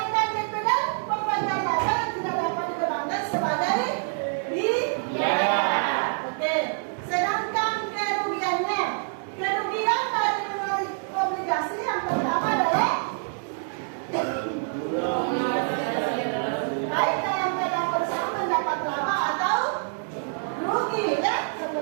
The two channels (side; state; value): left; silent; 61 dB below the other